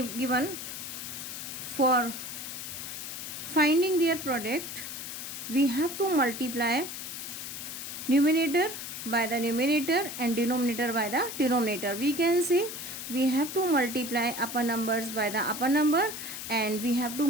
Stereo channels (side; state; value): left; noise; hiss, 8 dB below the sound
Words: For finding their product, we have to multiply numerator by the numerator and denominator by the denominator. We can say we have to multiply upper numbers by the upper number and we have to